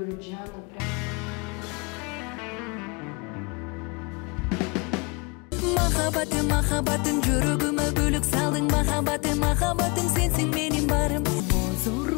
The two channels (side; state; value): right; quieter; 29.2 dB